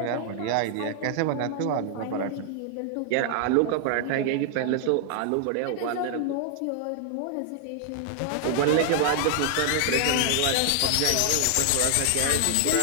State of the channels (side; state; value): both; different; correlation 0.00